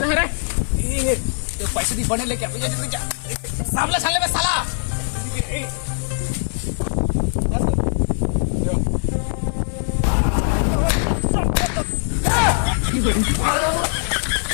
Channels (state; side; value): silent; right; 62 dB below the other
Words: है रे तो पैसे दी बने लेके सामने साले में साला।